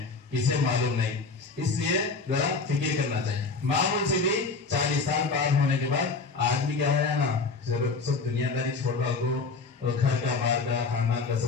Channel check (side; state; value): right; quieter; 4.4 dB